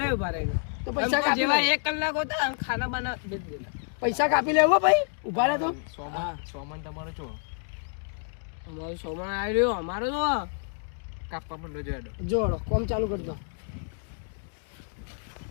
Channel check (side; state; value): right; silent; 59 dB below the other